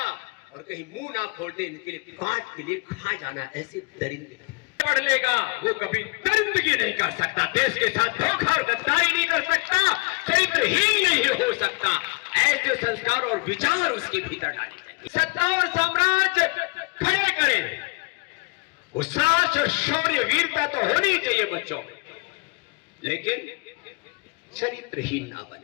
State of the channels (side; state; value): right; quieter; 29.3 dB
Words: और कहीं मुंह ना खोलते इनके लिए काट के लिए खा जाना, ऐसे दरिंदे पढ़ लेगा वो कभी दरिंदगी नहीं कर सकता, देश के साथ धोखा और गद्दारी नहीं कर सकता, चरित्रहीन नहीं हो सकता। ऐसे संस्कार और विचार उसके भीतर डाले जाएंगे। सत्ता और साम्राज्य खड़े करें, साहस और शौर्य वीरता तो होनी चाहिए बच्चों में, लेकिन चरित्रहीन ना